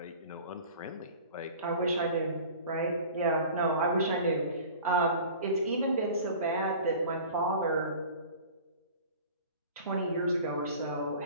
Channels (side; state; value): both; inverted; correlation -0.42